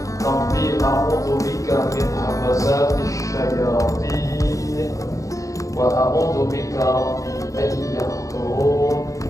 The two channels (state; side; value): late; right; 0.16 ms